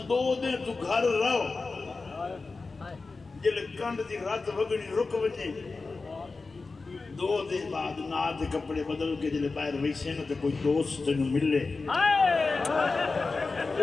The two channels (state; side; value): quieter; right; 3.9 dB